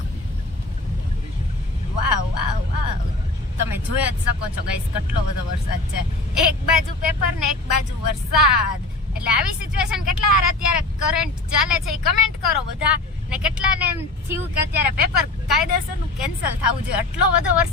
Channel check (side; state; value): right; quieter; 3.0 dB